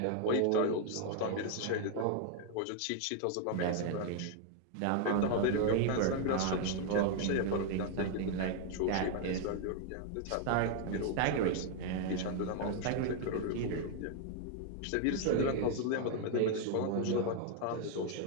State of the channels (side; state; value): both; different; correlation 0.00